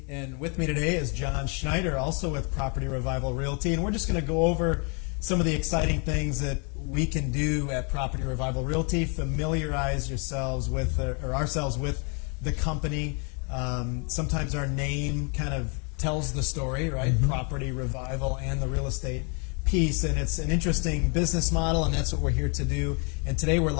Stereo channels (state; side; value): quieter; right; 36.4 dB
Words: and with me today is John Schneider, also with Property Revival Realty, and we're just going to go over some of the exciting things that we can do at Property Revival Realty, familiarize yourselves with, or ourselves with the company. Sometimes our name kind of tells the story, right? Mm-hmm. Property Revival and the real estate piece, and it's an interesting business model, and that's what we're here to do. And today we're